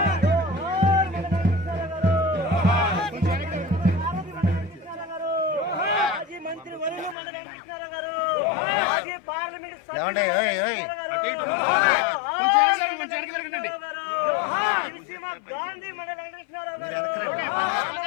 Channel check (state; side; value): drops out; right; at 7.2 s